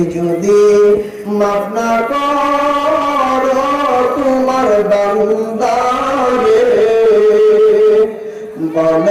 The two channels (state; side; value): identical; both; correlation 1.00